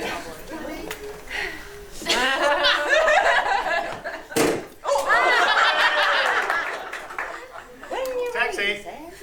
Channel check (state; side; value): identical; both; correlation 1.00